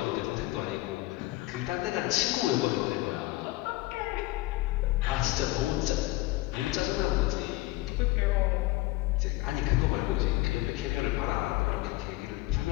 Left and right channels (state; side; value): quieter; right; 18.9 dB